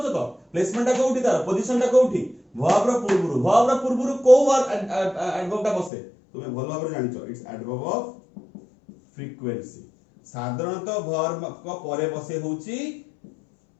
तो प्लेसमेंट टा कोउठी तार पोजीशन टा कोउठी वर्ब रो पूर्वुर को वर्ब एडवर्ब टा बसे तुमे भल भाबरे जानिछो इट्स एडवर्ब ऑफ फ्रीक्वेंसी साधारणतः वर्ब को परे बसे होउची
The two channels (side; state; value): right; drops out; at 5.9 s